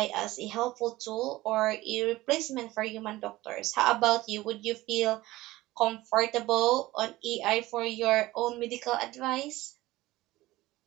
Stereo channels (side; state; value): left; quieter; 18.0 dB